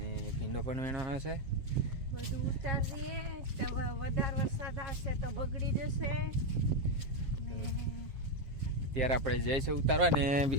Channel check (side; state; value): left; late; 7.4 ms